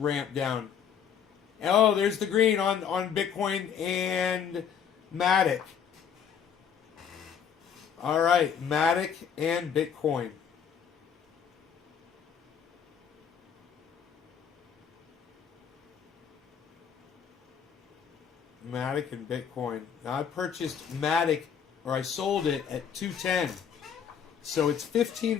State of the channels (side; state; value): right; quieter; 7.8 dB